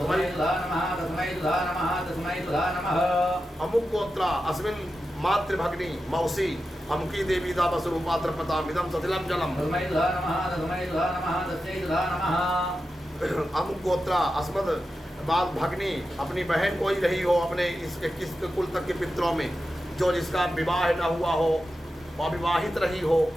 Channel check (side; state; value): both; normal; correlation 0.90